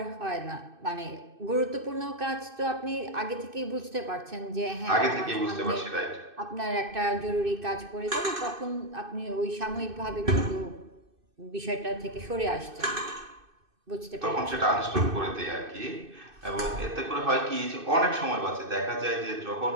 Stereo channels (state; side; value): late; left; 2.6 ms